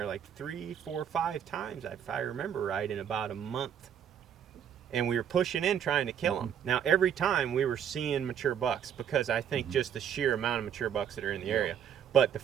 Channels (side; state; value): left; quieter; 8.9 dB